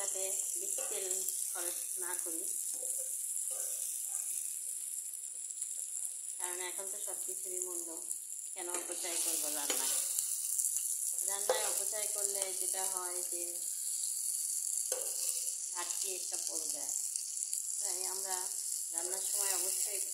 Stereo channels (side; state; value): both; identical; correlation 1.00